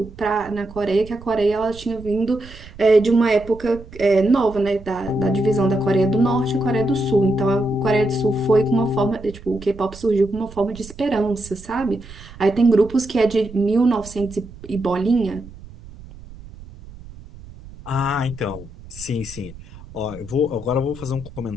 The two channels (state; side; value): noise; right; rumble, 17 dB below the sound